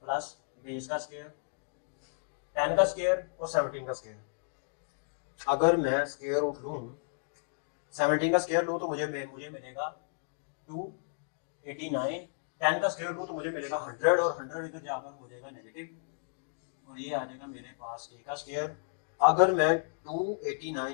प्लस बेस का स्क्वायर, 10 का स्क्वायर और 17 का स्क्वायर। अगर मैं स्क्वायर रूट लूं, 17 का स्क्वायर लूं तो मुझे मिलेगा 289, 10 का स्क्वायर लूं तो मुझे मिलेगा 100, और 100 इधर जाकर हो जाएगा नेगेटिव, और ये आ जाएगा मेरे पास ए का स्क्वायर। अगर मैं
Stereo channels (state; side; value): silent; right; digital silence